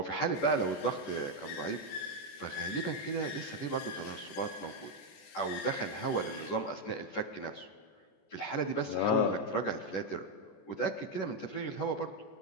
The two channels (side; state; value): right; late; 14 ms